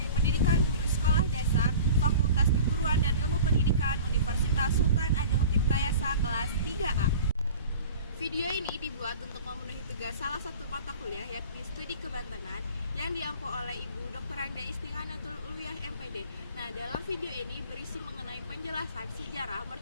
Pendidikan Guru Sekolah Dasar Fakultas Keguruan dan Ilmu Pendidikan Universitas Sultan Ageng Tirtayasa kelas 3A. Video ini dibuat untuk memenuhi tugas salah satu mata kuliah yakni studi kebantenan yang diampu oleh Ibu Dr. Anda Istighanatul Uluyah MPD. Nah, dalam video ini berisi mengenai penjelasan sejarah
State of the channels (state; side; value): inverted; both; correlation -0.40